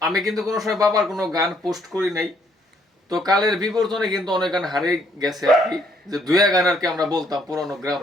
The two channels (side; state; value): both; normal; correlation 0.68